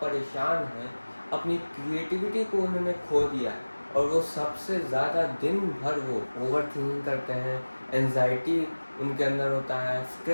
परेशान हैं, अपनी क्रिएटिविटी को उन्होंने खो दिया और वो सबसे ज़्यादा दिन भर वो ओवर थिंकिंग करते हैं, एंजाइटी उनके अंदर होता है,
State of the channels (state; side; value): inverted; both; correlation -1.00